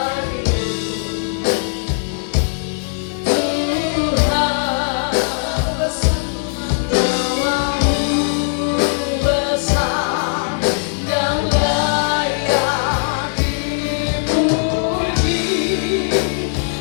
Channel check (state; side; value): silent; right; digital silence